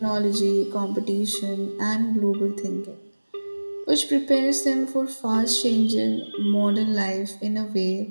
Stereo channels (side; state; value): both; inverted; correlation -1.00